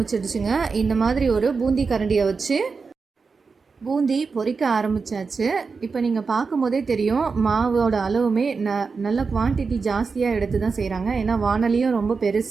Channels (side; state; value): left; quieter; 4.8 dB